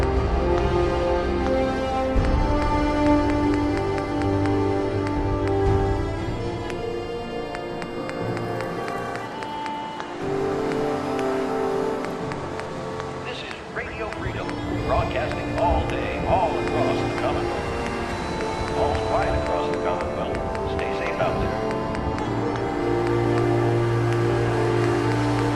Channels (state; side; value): identical; both; correlation 1.00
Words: Broadcasting all day, all across the Commonwealth. All's quiet across the Commonwealth. Stay safe out there.